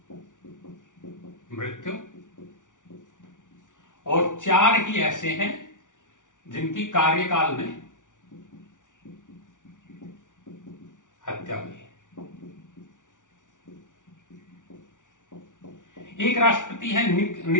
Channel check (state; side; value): late; right; 0.87 ms